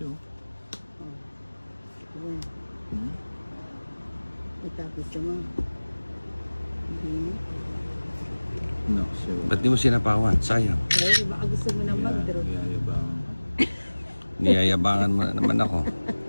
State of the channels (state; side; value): inverted; both; correlation -1.00